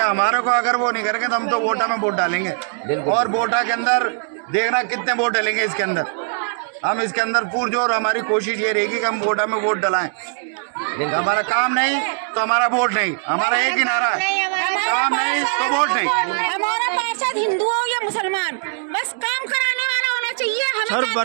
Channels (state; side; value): silent; left; digital silence